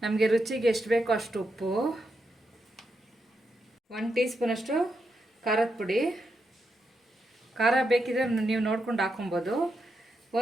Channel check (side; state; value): both; normal; correlation 0.84